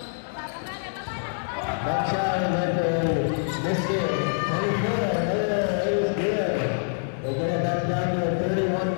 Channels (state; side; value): silent; right; digital silence